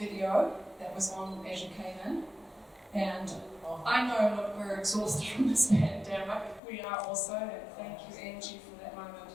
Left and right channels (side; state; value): right; drops out; at 6.6 s